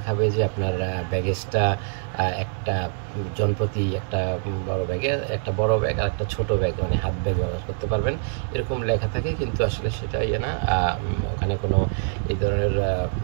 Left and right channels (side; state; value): left; silent; digital silence